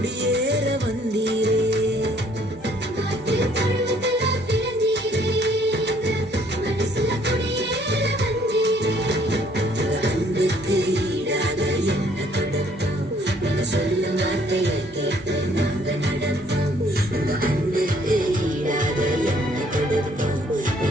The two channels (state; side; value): normal; both; correlation 0.63